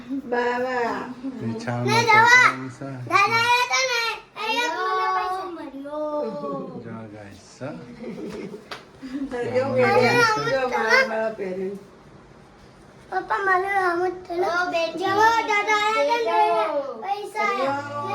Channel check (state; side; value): identical; both; correlation 1.00